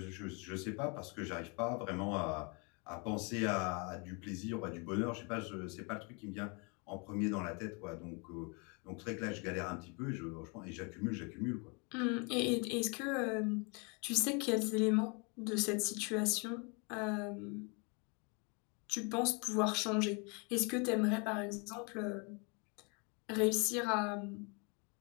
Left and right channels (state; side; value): quieter; right; 33.1 dB